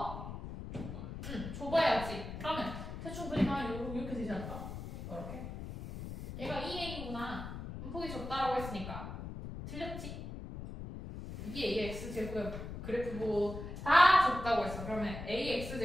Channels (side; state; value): left; noise; rumble, 8 dB below the sound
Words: 좁아야지. 그러면 대충 그리면 이렇게 되지 않을까? 이렇게. 얘가 2a구나. 폭이 좁다라고 했으니까 틀렸지? 이게 ax제곱의 그래프고 다 좁다고 했어. 그러면